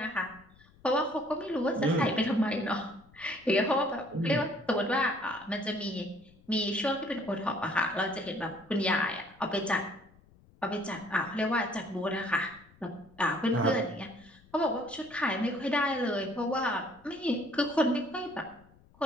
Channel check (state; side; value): noise; left; rumble, 27 dB below the sound